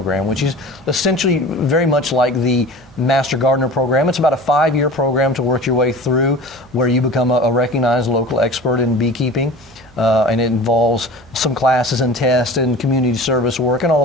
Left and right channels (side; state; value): right; noise; hum, 26 dB below the sound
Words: which is essentially very much like the Master Gardener program. It's about a 5-year program to work your way through, where you become a recognized local expert in beekeeping. And it involves some classes and tests and community service work and